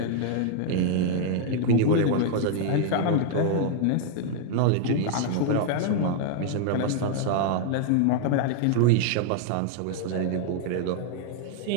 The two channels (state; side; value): different; both; correlation 0.00